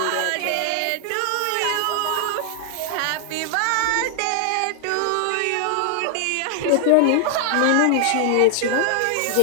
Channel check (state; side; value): different; both; correlation 0.00